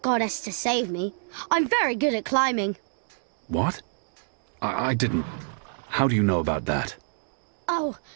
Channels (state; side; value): silent; left; 60 dB below the other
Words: to save me. I'm very good at climbing. What? I didn't... How do you know about that? Oh,